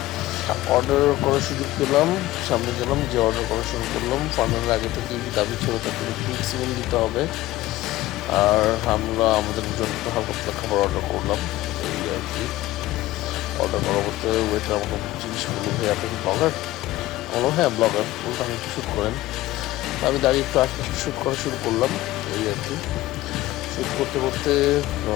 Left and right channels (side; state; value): right; quieter; 16.7 dB